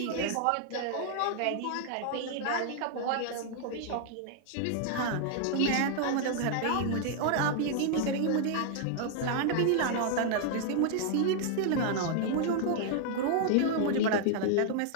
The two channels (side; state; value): both; different; correlation -0.01